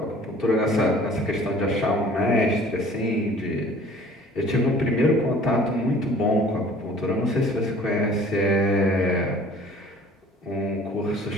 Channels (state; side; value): normal; both; correlation 0.50